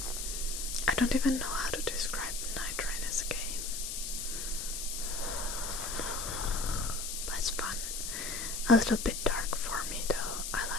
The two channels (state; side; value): noise; left; hiss, 4 dB below the sound